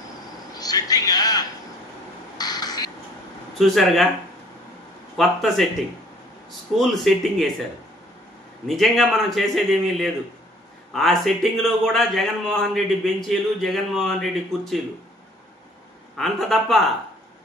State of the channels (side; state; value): both; normal; correlation 0.56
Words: చూసారుగా, కొత్త సెట్టింగ్, స్కూల్ సెట్టింగ్ వేశారు. నిజంగా మనం చేసేదేమీ లేదు. ఆ సెట్టింగ్లో కూడా జగన్మోహన్ రెడ్డి బెంచీలు, జగన్మోహన్ రెడ్డి కుర్చీలు, అంత తప్ప